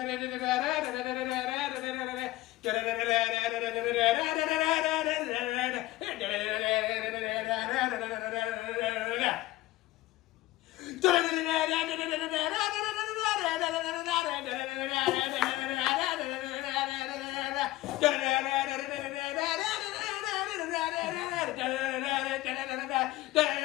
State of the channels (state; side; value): quieter; right; 17.4 dB